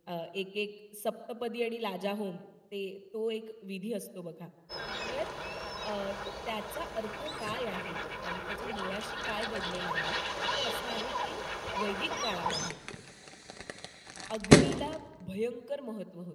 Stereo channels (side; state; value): both; identical; correlation 1.00